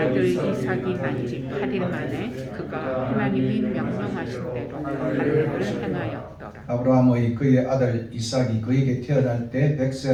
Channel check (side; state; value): both; identical; correlation 1.00